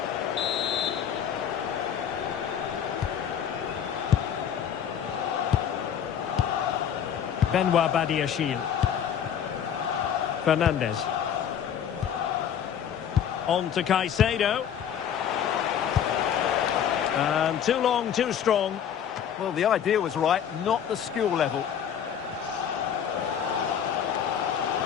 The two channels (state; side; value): quieter; right; 8.8 dB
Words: Benoit Badiashile. Fernandes. On to Caicedo. And too long, too strong. Well, the idea was right, not the skill level.